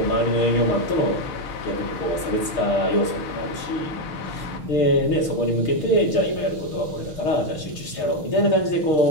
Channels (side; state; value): right; late; 6.6 ms